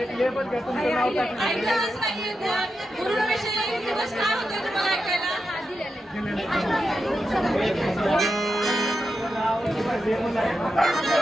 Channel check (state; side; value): normal; both; correlation 0.88